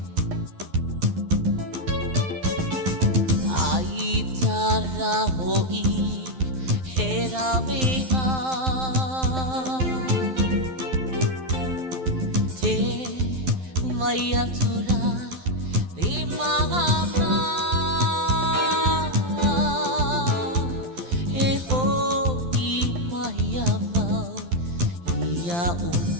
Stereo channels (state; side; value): late; left; 12 ms